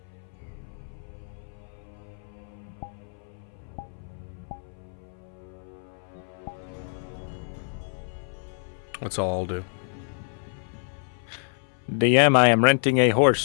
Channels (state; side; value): silent; right; 57 dB below the other